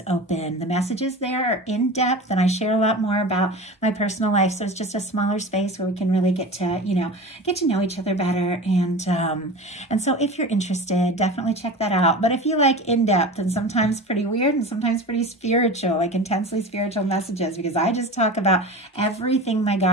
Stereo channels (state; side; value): normal; both; correlation 0.32